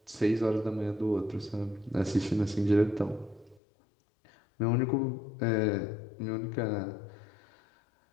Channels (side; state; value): right; drops out; at 3.6 s